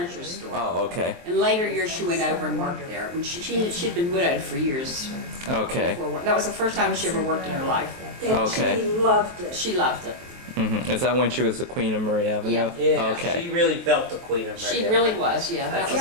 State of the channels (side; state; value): left; late; 23 ms